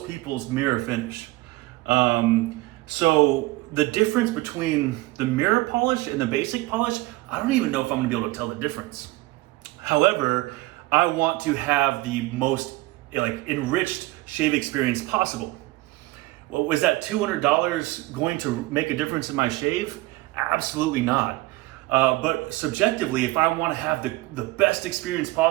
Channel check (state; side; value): quieter; left; 20.0 dB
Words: people's mirror finish. So the difference between the mirror polish and the basic polish, I don't even know if I'm gonna be able to tell the difference. However, I want to have the most enriched shave experience possible. Well, was that $200 going to make a difference in my shave? Absolutely not. But subjectively, if I want to have the best experience